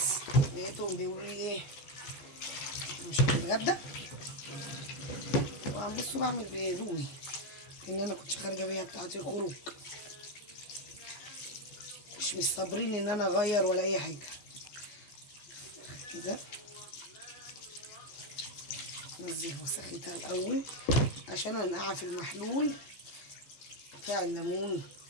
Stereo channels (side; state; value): right; late; 14 ms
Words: لقيتهم بيقولوا لي ايه مش هنتغدى. طبعا بصوا بعمل برومي ان انا كنت خارجه بيها بتاعه الخروج، مش مستبرين ان انا اغير ولا اي حاجه. كده نزل وسختها الاول عشان انقعها في المحلول بتاع الليمون